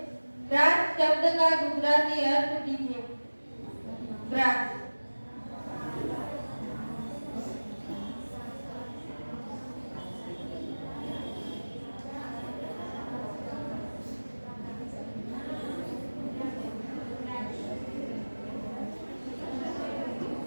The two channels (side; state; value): both; inverted; correlation -1.00